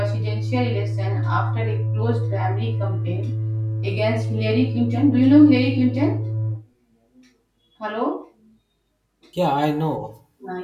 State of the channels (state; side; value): identical; both; correlation 1.00